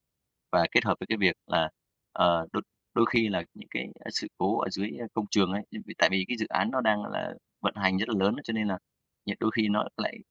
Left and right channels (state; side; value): identical; both; correlation 1.00